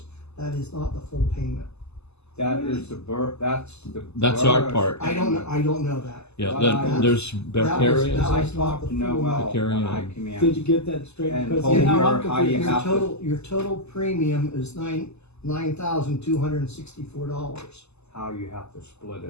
That is not the full payment. That is That's our borough's part. I don't know that. Yeah, Well, then there's that was- Vicarious, that I was not talked the to full Noel Carry when I on. came in. Did you get that straight? And Because told you know, her I'm how you confused. have to- Your total premium is $9,264. How you have to split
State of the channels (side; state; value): right; late; 0.80 ms